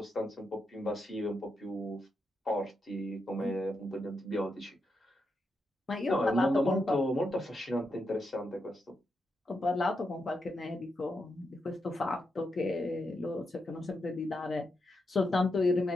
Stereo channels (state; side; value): normal; both; correlation 0.84